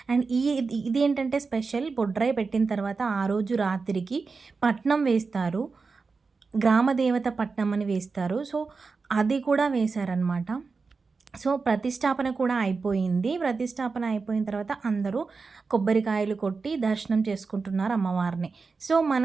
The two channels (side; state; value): left; quieter; 4.5 dB